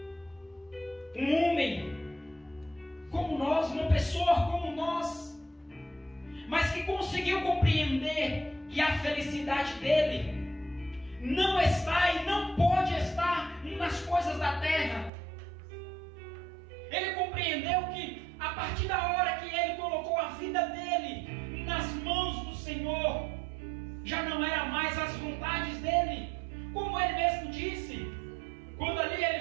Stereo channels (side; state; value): left; drops out; at 15.1 s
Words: Um homem como nós, uma pessoa como nós, mas que conseguiu compreender que a felicidade dele não está e não pode estar nas coisas da terra. Ele compreendeu que a partir da hora que ele colocou a vida dele nas mãos do Senhor, já não era mais as vontades dele, como ele mesmo disse, quando ali